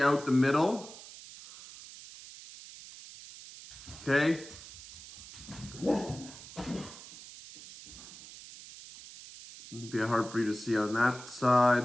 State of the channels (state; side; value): noise; right; hiss, 16 dB below the sound